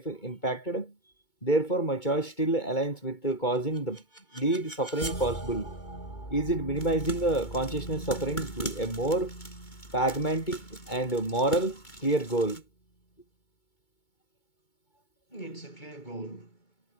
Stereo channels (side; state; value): right; late; 2.2 ms